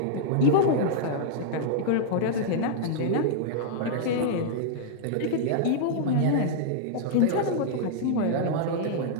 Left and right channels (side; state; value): both; different; correlation -0.01